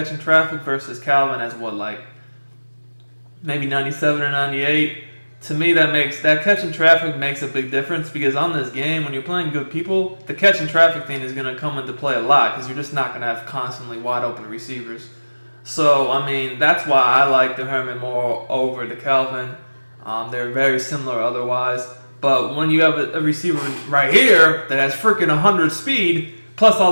and traffic versus Calvin has maybe 97 or 98. To me, that catch and traffic makes a big difference because on this game, when you're playing good people, the catch and traffic thing is going to come into play a lot because you're just not going to have constantly wide open receivers. So, that's why I like the Herman Moore over the Calvin. They're very similar otherwise. But when you have a receiver right here that has freaking 100 speed, plus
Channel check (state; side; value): inverted; both; correlation -1.00